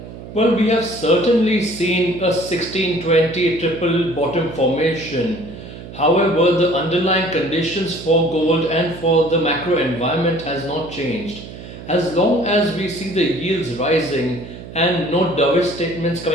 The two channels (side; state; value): right; noise; hum, 13 dB below the sound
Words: Well, we have certainly seen a 1620 triple bottom formation. However, the underlying conditions for gold and for the macro environment has not changed. As long as we see the yields rising and no dovish statements